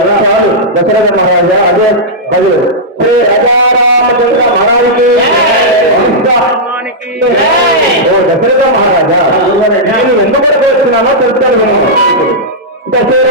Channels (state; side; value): normal; both; correlation -0.10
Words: చాలు దశరథ మహారాజా. అదే అది శ్రీ రాజారామచంద్ర మహారాజుకి ఓ దశరథ మహారాజా, నేను ఎందుకు వస్తున్నానో తెలుస్తాను.